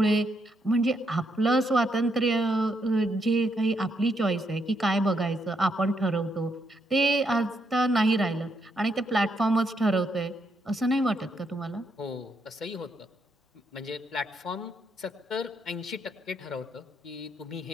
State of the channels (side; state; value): both; normal; correlation 0.77